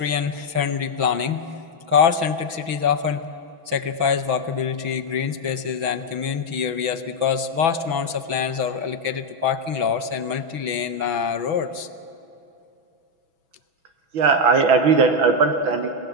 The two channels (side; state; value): left; late; 6.2 ms